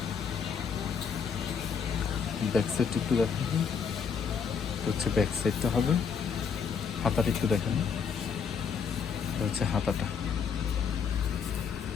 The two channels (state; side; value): quieter; right; 6.4 dB